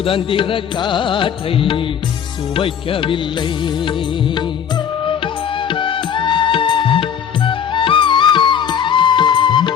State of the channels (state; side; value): quieter; right; 8.3 dB